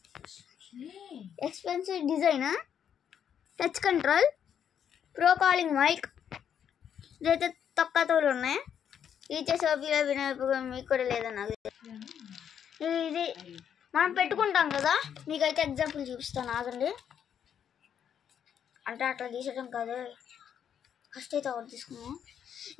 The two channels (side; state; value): right; quieter; 8.6 dB